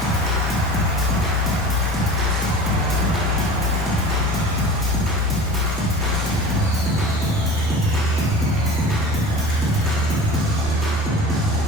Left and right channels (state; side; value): normal; both; correlation 0.37